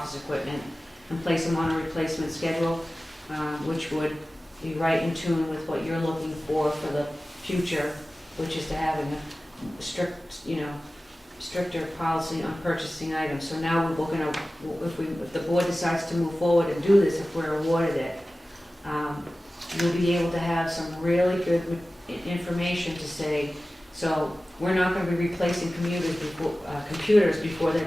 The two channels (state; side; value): normal; both; correlation 0.96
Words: equipment, and place them on a replacement schedule, which would be right in tune with what you're looking for the future, which is to having a stricter policy on purchasing items. So now we're gonna, if the board decides to move forward and do this, if we're awarded it, you'll be able to have some really good information to say, so we're not gonna be replacing computers before their